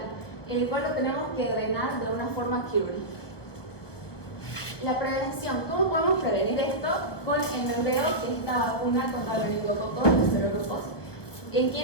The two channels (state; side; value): late; right; 1.1 ms